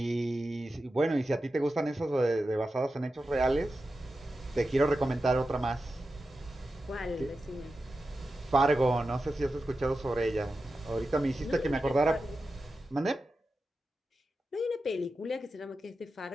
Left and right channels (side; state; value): both; normal; correlation 0.91